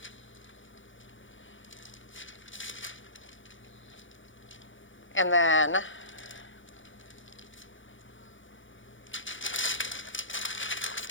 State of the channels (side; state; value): right; late; 0.56 ms